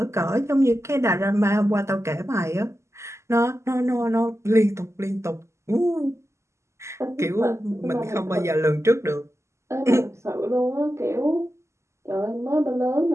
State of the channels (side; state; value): left; late; 0.13 ms